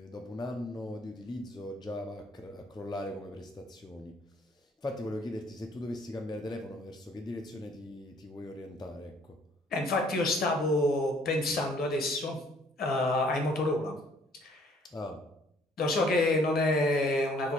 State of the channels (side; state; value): both; normal; correlation 0.61